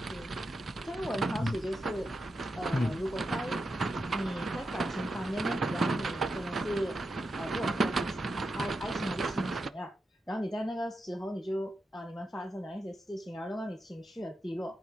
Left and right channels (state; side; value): normal; both; correlation 0.88